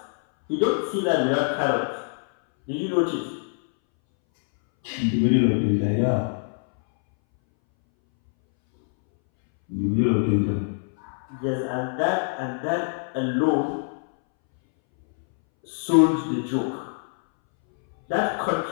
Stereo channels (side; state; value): right; silent; 61 dB below the other